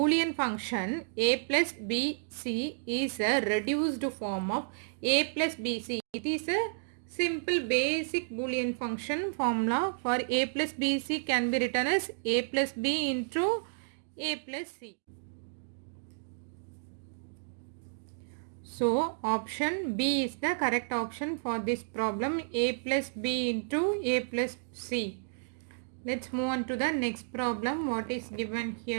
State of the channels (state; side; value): silent; left; digital silence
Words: function a plus bc is a reduced form of a plus bc. It is a simple basic Boolean function formula for a plus bc can be written as a plus b into a plus c. So option B is the correct option for this problem, a plus b into a plus c. Let's move on to the next problem. What is given